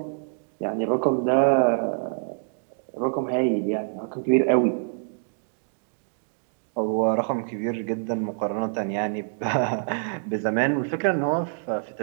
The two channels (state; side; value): silent; left; digital silence